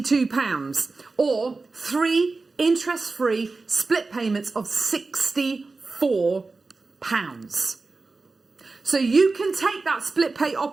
or 3 interest-free split payments of £64. So you can take that split pay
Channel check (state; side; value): quieter; left; 3.8 dB